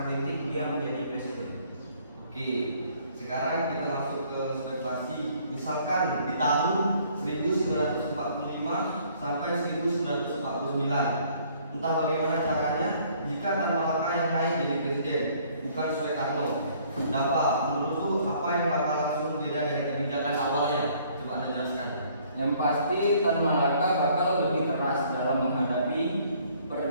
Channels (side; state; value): both; inverted; correlation -0.61